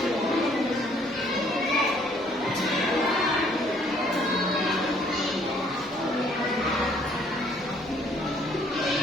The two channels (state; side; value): normal; both; correlation 0.63